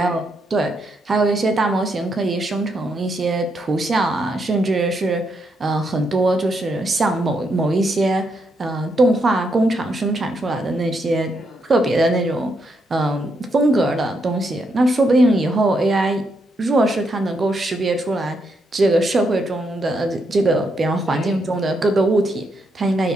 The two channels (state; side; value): normal; both; correlation 0.79